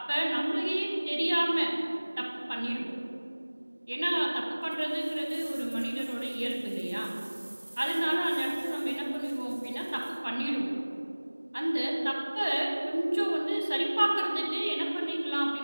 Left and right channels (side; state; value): both; inverted; correlation -1.00